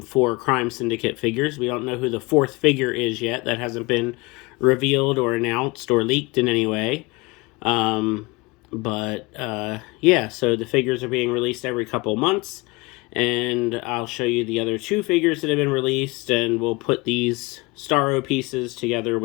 Crime Syndicate figures. We don't know who the 4th figure is yet. That hasn't been revealed or announced or leaked in any way. Yeah, so the figures are being released every couple months. And I'll show you the other 2 figures that have been released, and we'll put these STARRO pieces together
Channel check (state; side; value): quieter; right; 24.7 dB